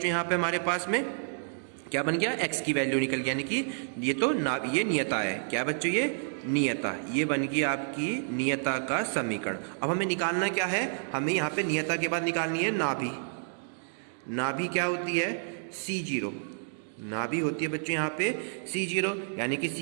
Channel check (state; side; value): silent; left; digital silence